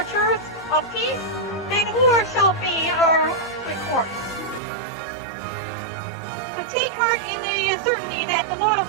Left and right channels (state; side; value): drops out; left; at 4.6 s